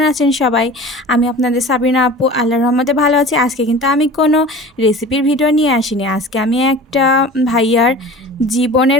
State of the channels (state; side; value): normal; both; correlation 0.39